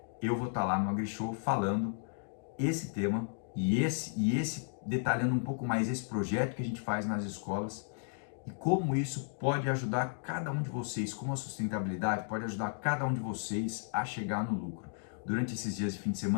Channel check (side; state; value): right; silent; digital silence